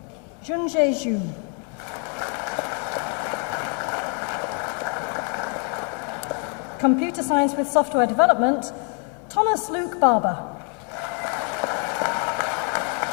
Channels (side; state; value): right; quieter; 38.6 dB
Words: Zhengzhe Zhu. Computer Science with Software Development, Thomas Luke Barber.